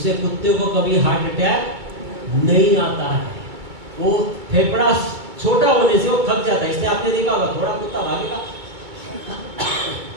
कुत्ते को कभी हार्ट अटैक नहीं आता है। वो फेफड़ा छोटा होने से वो थक जाता है, इसलिए आपने देखा होगा थोड़ा कुत्ता भागेगा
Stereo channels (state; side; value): late; left; 2.2 ms